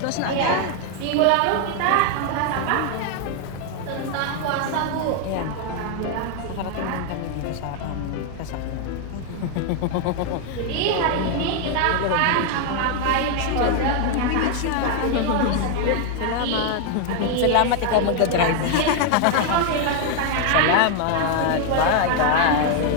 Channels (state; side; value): different; both; correlation 0.00